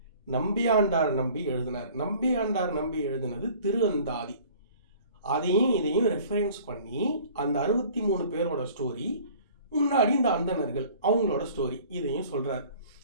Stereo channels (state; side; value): inverted; both; correlation -0.50